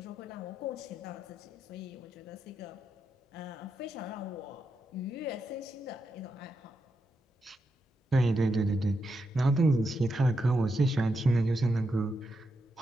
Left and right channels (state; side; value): normal; both; correlation 0.84